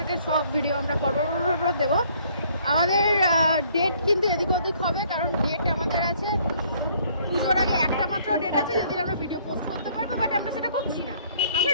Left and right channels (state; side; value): inverted; both; correlation -0.62